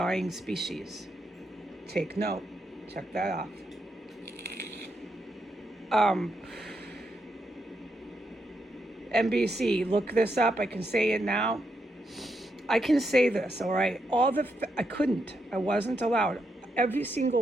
species. Take note. Check that off. NBC, look this up. I can say it now. I can say this, all right? I wasn't allowed. Every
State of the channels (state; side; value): normal; both; correlation 0.81